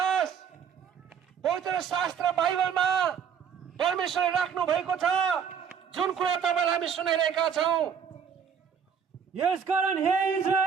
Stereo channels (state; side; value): quieter; left; 7.4 dB